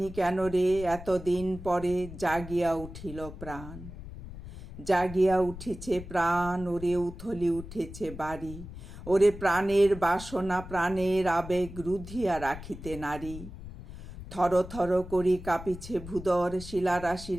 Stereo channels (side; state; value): left; noise; rumble, 13 dB below the sound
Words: কেন রে এতদিন পরে জাগিয়া উঠিল প্রাণ। জাগিয়া উঠেছে প্রাণ, ওরে উথলি উঠেছে বাড়ি, ওরে প্রাণের বাসনা প্রাণের আবেগ রুধিয়া রাখিতে নারী। থর থর করি কাঁপিছে ভূদর, শিলা রাশি